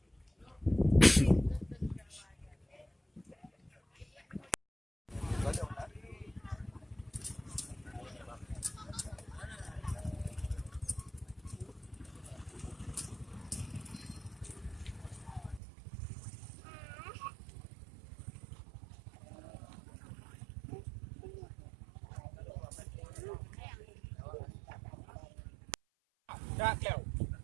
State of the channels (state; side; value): drops out; left; at 15.6 s